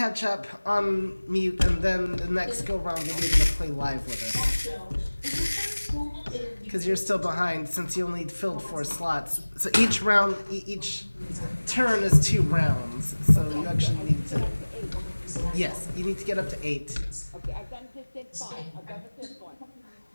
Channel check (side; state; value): both; inverted; correlation -1.00